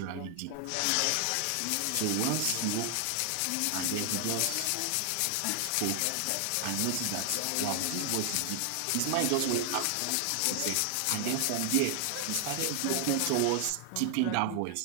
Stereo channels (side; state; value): both; different; correlation 0.00